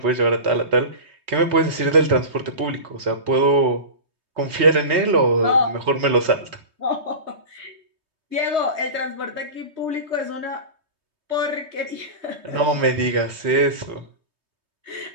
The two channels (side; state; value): left; late; 3.2 ms